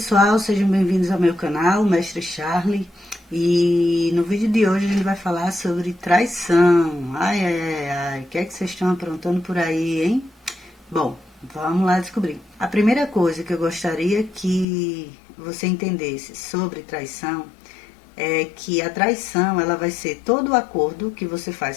sejam bem-vindos ao meu canal, Mestre Charlie. E no vídeo de hoje a gente vai falar sobre traição. Ai, o que é que vocês estão aprontando por aí, hein? Bom, vamos lá descobrir. A primeira coisa que eu gostaria que você entendesse sobre traição é que a traição ela vai ser todo o acordo que você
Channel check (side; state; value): right; drops out; at 14.7 s